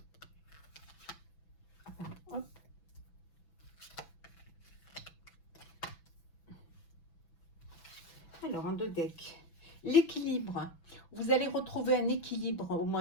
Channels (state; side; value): late; right; 6.0 ms